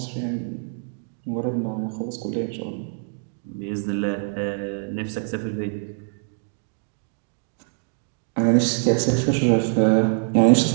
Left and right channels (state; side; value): silent; left; 62 dB below the other